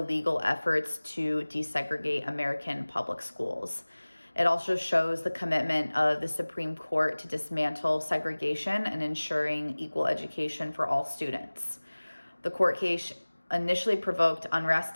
efforts to desegregate American public schools. It also shows the commitment of the Supreme Court to dismantle segregation and ensuring equal education for all students. The court case initially provoked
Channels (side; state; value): both; inverted; correlation -1.00